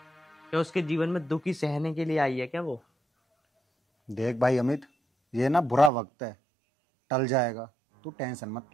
क्या उसके जीवन में दुख ही सहने के लिए आई है क्या वो? देख भाई अमित, ये ना बुरा वक्त है, टल जाएगा, तू टेंशन मत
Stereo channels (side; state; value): left; drops out; at 5.9 s